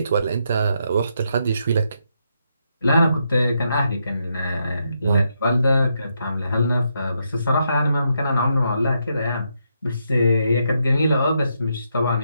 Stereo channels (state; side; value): inverted; both; correlation -0.79